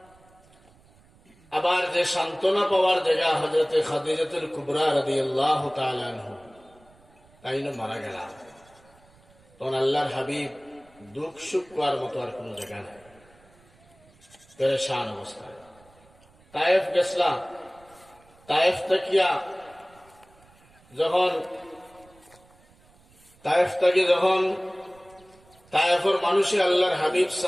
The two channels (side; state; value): right; noise; rumble, 29 dB below the sound